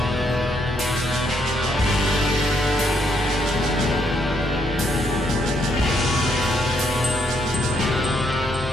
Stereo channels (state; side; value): normal; both; correlation 0.74